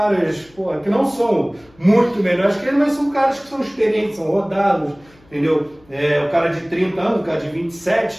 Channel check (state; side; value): noise; left; hum, 29 dB below the sound